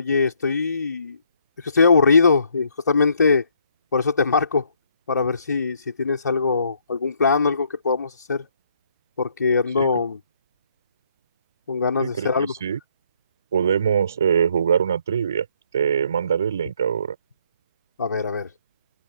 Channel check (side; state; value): both; inverted; correlation -0.68